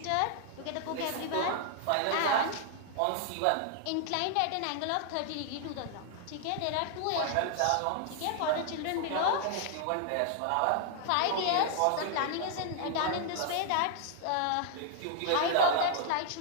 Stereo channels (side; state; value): both; different; correlation 0.00